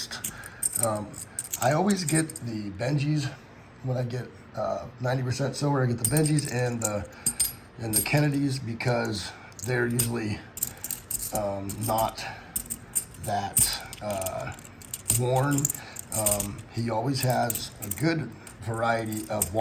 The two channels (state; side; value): identical; both; correlation 1.00